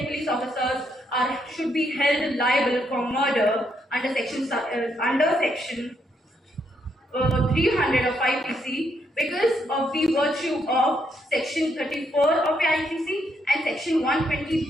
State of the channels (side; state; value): both; normal; correlation 0.76